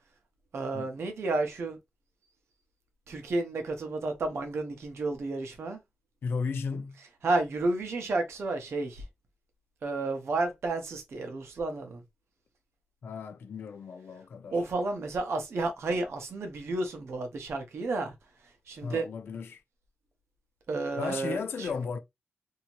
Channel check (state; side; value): normal; both; correlation 0.81